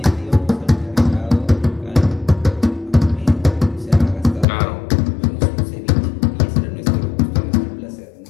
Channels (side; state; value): right; drops out; at 4.5 s